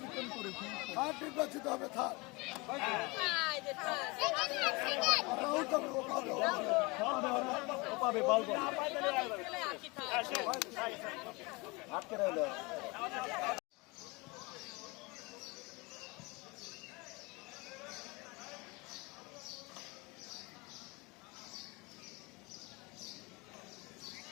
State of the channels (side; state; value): right; quieter; 25.4 dB